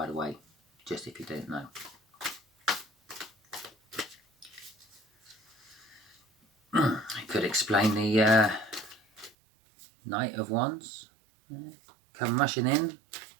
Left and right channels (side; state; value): left; drops out; at 9.3 s